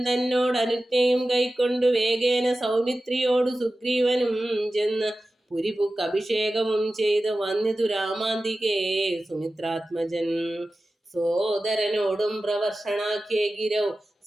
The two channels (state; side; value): normal; both; correlation 0.95